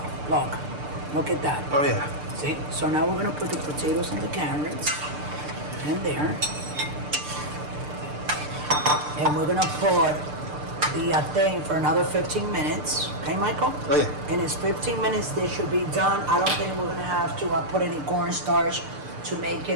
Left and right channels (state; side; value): late; left; 6.7 ms